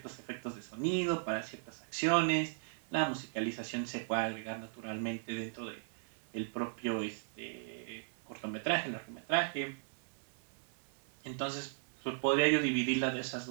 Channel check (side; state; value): left; silent; 53 dB below the other